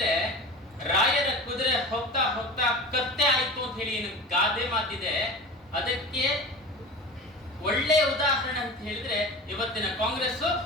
ರಾಯರ ಕುದುರೆ ಹೋಗ್ತಾ ಹೋಗ್ತಾ ಕತ್ತೆ ಆಯ್ತು ಅಂತ ಹೇಳಿ ಏನು ಗಾದೆ ಮಾತಿದೆ, ಅದಕ್ಕೆ ಒಳ್ಳೆಯ ಉದಾಹರಣೆ ಅಂತ ಹೇಳಿದ್ರೆ ಇವತ್ತಿನ ಕಾಂಗ್ರೆಸ್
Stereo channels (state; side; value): normal; both; correlation 0.33